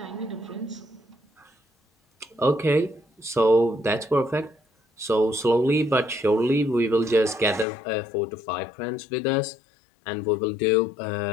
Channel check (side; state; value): right; drops out; at 7.7 s